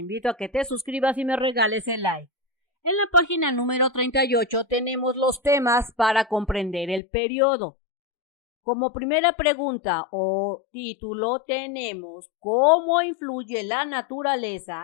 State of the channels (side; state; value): right; drops out; at 7.0 s